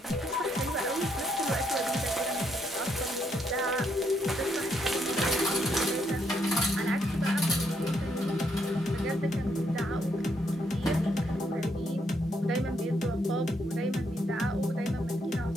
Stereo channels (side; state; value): both; normal; correlation 0.75